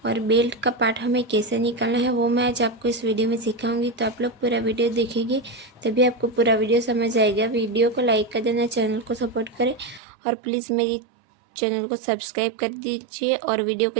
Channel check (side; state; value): left; drops out; at 10.0 s